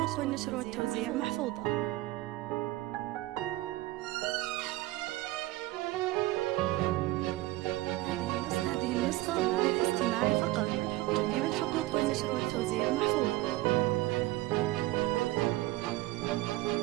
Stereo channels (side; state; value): left; quieter; 18.0 dB